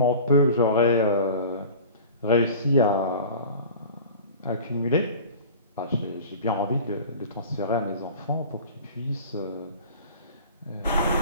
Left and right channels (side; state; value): both; inverted; correlation -0.39